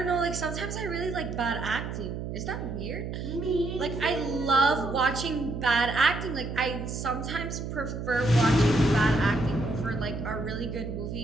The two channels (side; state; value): right; noise; hum, 6 dB below the sound